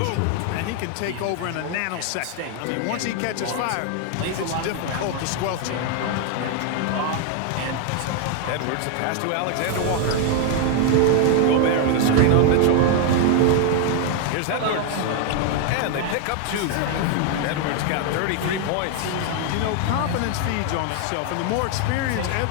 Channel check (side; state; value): both; different; correlation 0.00